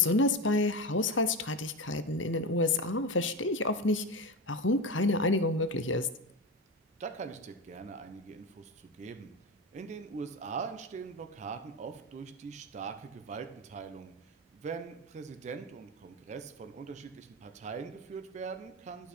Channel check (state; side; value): normal; both; correlation 0.21